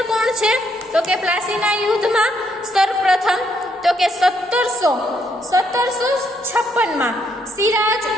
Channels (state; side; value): normal; both; correlation 0.73